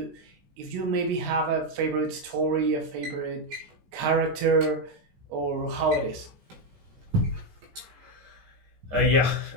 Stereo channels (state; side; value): late; left; 16 ms